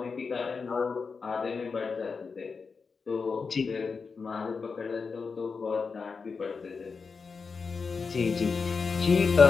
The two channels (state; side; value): quieter; right; 5.0 dB